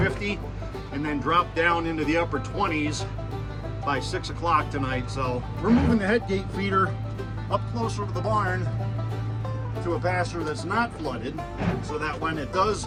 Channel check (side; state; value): both; identical; correlation 1.00